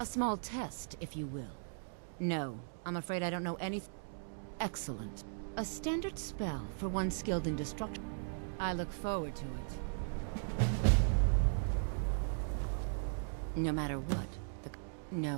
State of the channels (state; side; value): silent; left; digital silence